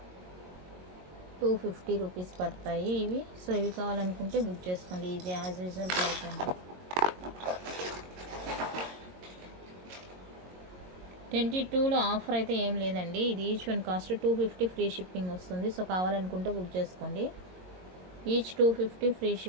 రూపీస్ పడతాయి ఇవి. సో ఇవి కావాలనుకుంటే బుక్ చేసుకోండి. ఇది యాజ్ యూజువల్ ప్రైస్ అండి. 22లో ఆఫర్ అయితే ఏం లేదండి. ఇది each one cost 250 free shipping వస్తుంది. సో కావాలనుకుంటే బుక్ చేసుకోండి. ఈచ్ 250 ఫ్రీ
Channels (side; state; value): left; late; 22 ms